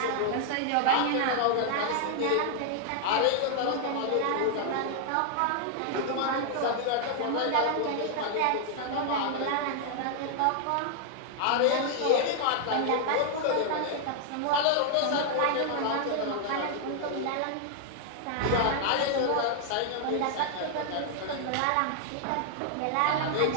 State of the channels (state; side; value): different; both; correlation 0.00